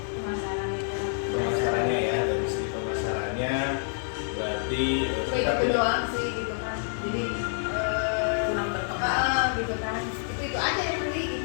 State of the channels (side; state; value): right; silent; digital silence